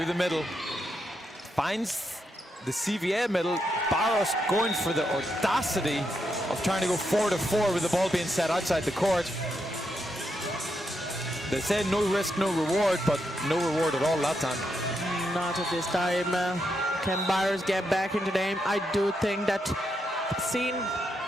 the middle. Finds the CVA middle. Barros going for the audacity of trying to go 4 to 4 with the ball being set outside the court. They say no risk, no reward, but no reward at all that time. Not at this time. Can Barros get back into the game? I do think that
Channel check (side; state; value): both; normal; correlation 0.82